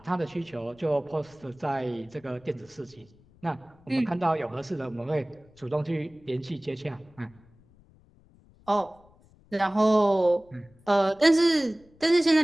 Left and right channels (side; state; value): left; noise; rumble, 29 dB below the sound